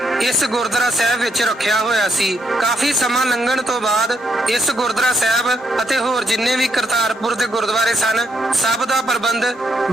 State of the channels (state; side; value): normal; both; correlation 0.76